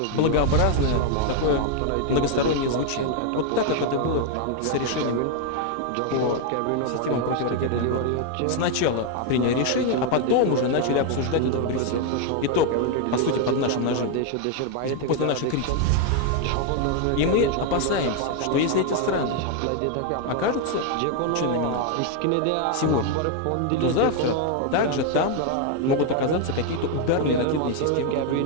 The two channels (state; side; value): different; both; correlation 0.01